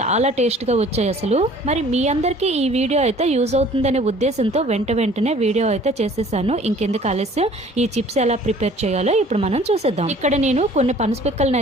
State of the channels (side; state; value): both; normal; correlation 0.52